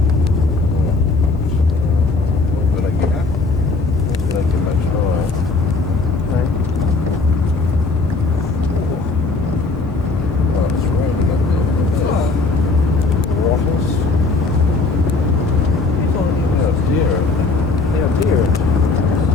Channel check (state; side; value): quieter; right; 3.8 dB